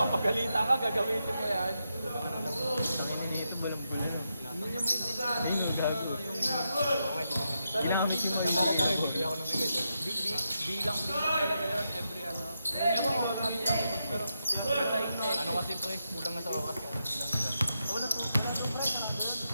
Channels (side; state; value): both; inverted; correlation -0.85